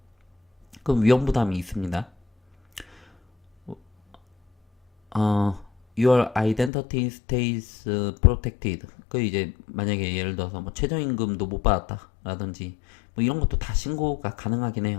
그 위험 부담이 있습니다. Your identity stays protected. 그 이제 만약에 예를 들어서 뭐 최저임금도 못 받았다 라든지 뭐 이런 것도 다 신고가 가능하긴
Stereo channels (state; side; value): drops out; right; at 6.7 s